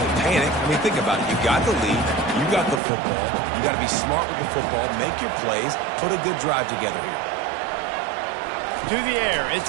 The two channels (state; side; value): drops out; left; at 2.8 s